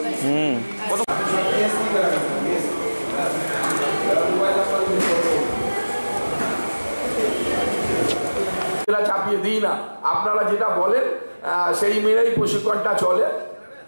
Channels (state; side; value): inverted; both; correlation -1.00